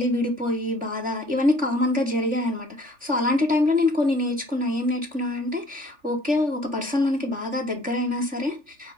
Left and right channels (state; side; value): late; left; 3.4 ms